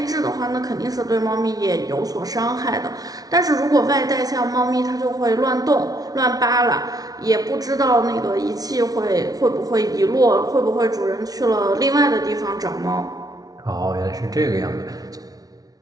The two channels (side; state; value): left; late; 0.18 ms